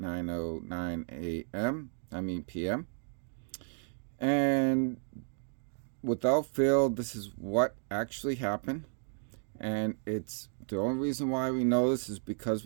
a.m. p.m. And without fail, this is what actually happened. And it's the only reason why we know this is because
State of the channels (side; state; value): left; silent; digital silence